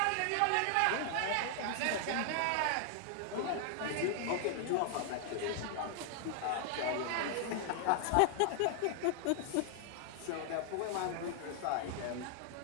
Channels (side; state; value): both; different; correlation 0.00